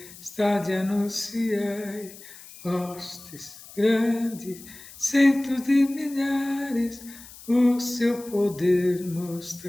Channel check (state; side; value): noise; left; hiss, 18 dB below the sound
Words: anunciai. Hostes grandes, centos de milhares, o seu poder